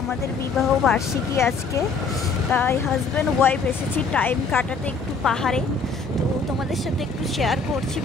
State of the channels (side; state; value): right; quieter; 4.5 dB